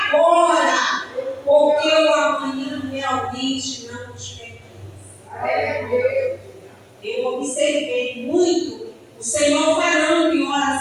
porque o amanhã realmente não nos pertence. Eu observei muito o Senhor falando em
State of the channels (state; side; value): identical; both; correlation 1.00